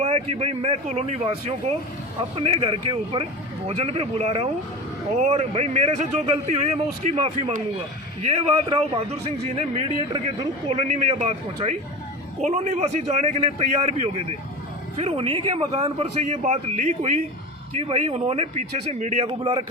कि भाई मैं कॉलोनी वासियों को अपने घर के ऊपर भोजन पे बुला रहा हूँ और भाई मेरे से जो गलती हुई है मैं उसकी माफ़ी मांगूंगा। ये बात राव बहादुर सिंह जी ने मीडिएटर के थ्रू कॉलोनी में यह बात पहुँचाई। कॉलोनी वासी जाने के लिए तैयार भी हो गए थे। फिर उन्हीं के मकान पर से ये बात लीक हुई कि भाई उन्होंने पीछे से मीडिया को बुला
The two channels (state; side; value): normal; both; correlation 0.29